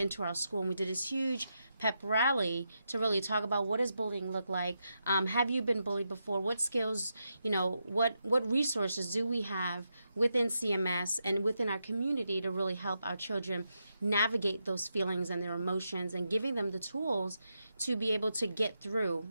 our school, and we did this huge pep rally to really talk about what does bullying look like. Have you been bullied before? What skills, what resources do we have within CMS and within our community to really help our children navigate those feelings and their emotions, and giving them the tools to be able to get through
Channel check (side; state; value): both; inverted; correlation -0.84